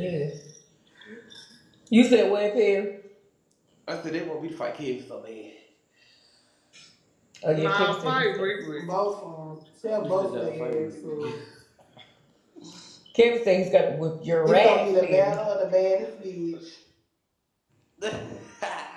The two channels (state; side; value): identical; both; correlation 1.00